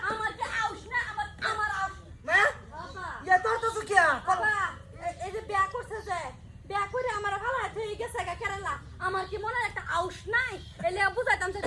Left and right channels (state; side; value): identical; both; correlation 1.00